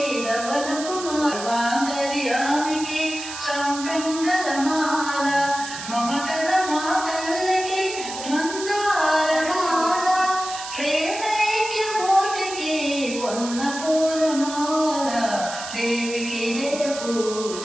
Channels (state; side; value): noise; right; hiss, 9 dB below the sound